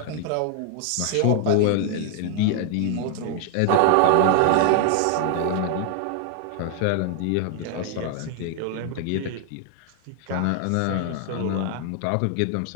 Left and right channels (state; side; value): different; both; correlation 0.00